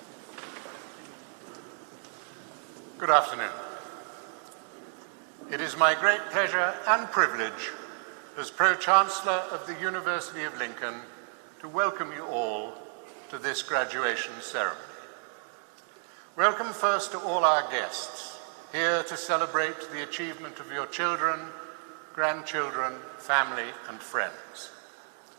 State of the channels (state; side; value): silent; left; 57 dB below the other